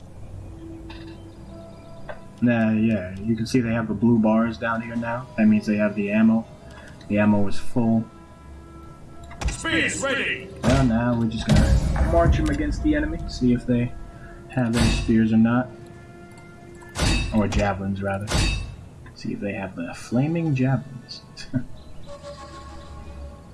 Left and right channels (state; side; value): identical; both; correlation 1.00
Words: Yeah, you can see they have the blue bars down here now. That means they have the ammo. The ammo is full. Spears ready. Well, now we're just gonna march them against the enemy, see if they have their spears or not. Or javelins, rather. See if they have the flaming javelins.